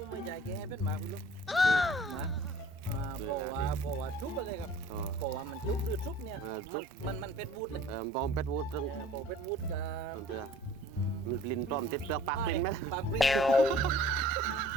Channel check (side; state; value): both; normal; correlation 0.49